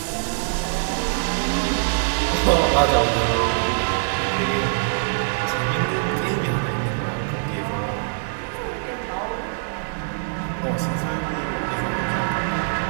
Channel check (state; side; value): silent; left; digital silence